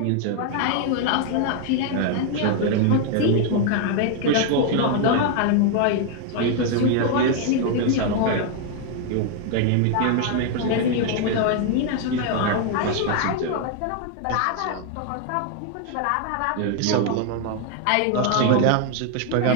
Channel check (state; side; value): different; both; correlation 0.00